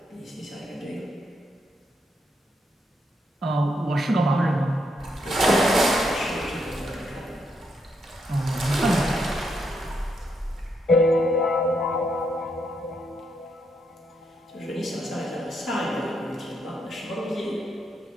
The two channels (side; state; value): both; normal; correlation 0.79